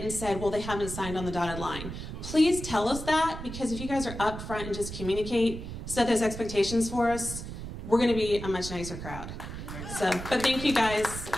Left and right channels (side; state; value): right; noise; rumble, 9 dB below the sound